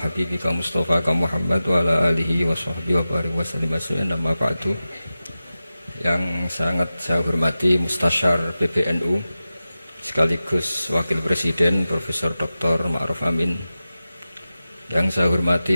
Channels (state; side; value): inverted; both; correlation -0.95